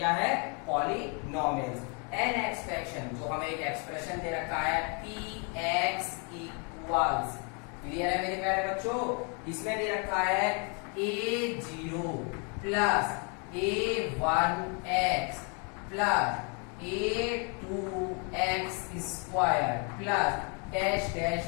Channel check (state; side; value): quieter; right; 35.9 dB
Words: है पॉलिनोमियल्स। एन एक्सप्रेशन जो हमें एक एक्सप्रेशन दे रखा है px इक्वल्स, क्लियर है मेरे प्यारे बच्चों? इसमें दे रखा है a0 plus a1x plus a2x square plus dash dash